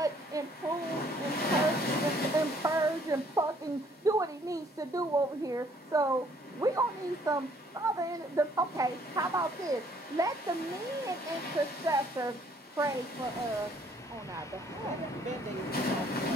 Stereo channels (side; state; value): both; normal; correlation 0.62